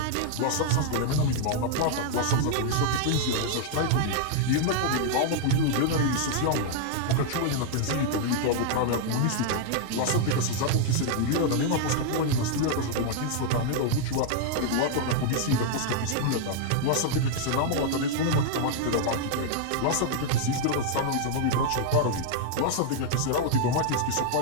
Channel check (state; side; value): different; both; correlation -0.01